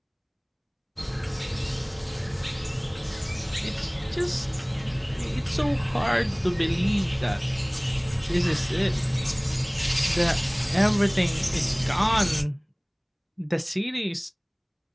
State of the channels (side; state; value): both; identical; correlation 1.00